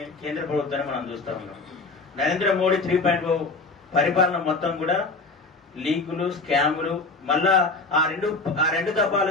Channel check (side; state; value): right; quieter; 3.6 dB